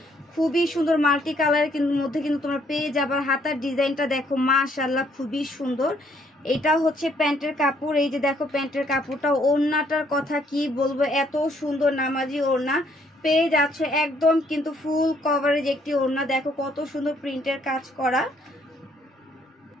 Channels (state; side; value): normal; both; correlation 0.67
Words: খুবই সুন্দর মাল্টি কালারের মধ্যে কিন্তু তোমরা পেয়ে যাবার। হাতার ডিজাইনটা দেখো মাশাআল্লাহ খুবই সুন্দর। এটা হচ্ছে প্যান্টের কাপড়, এই যে দেখো প্যান্টের কাপড়টা। ওড়নাটার কথা কি বলবো, এত সুন্দর নামাজি ওড়না পেয়ে যাচ্ছ একদম কিন্তু ফুল কভারেজ একটি ওড়না। দেখো কত সুন্দর প্রিন্টের কাজ করা।